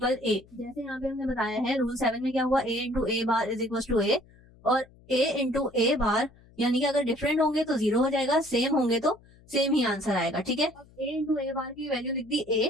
ए। जैसे यहाँ पे हमने बताया है रूल 7 में क्या हुआ, A into A bar is equal to A, और ए इंटू ए बार यानी कि अगर डिफरेंट होंगे तो 0 हो जाएगा, सेम होंगे तो सेम ही आंसर आएगा, ठीक है। अब ए इंटू ए बार की वैल्यू लिख दी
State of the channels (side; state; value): left; noise; hum, 26 dB below the sound